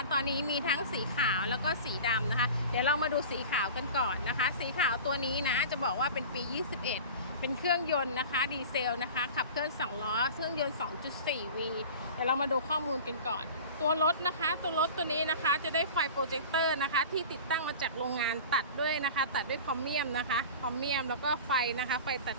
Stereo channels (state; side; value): inverted; both; correlation -0.37